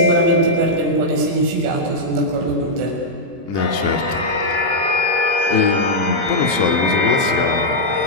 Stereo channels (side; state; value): left; late; 24 ms